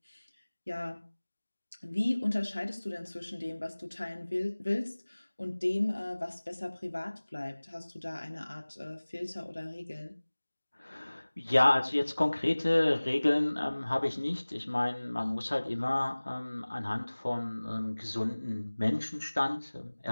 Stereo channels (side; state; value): both; inverted; correlation -1.00